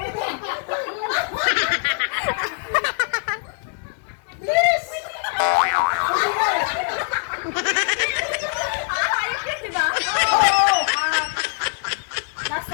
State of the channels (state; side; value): silent; right; 64 dB below the other